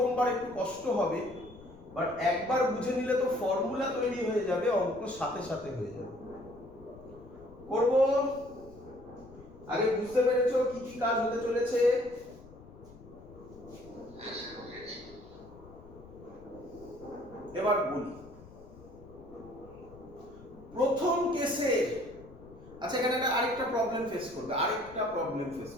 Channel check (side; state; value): left; noise; rumble, 20 dB below the sound